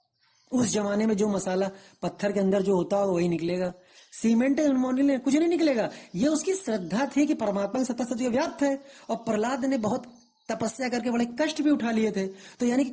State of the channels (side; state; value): both; identical; correlation 1.00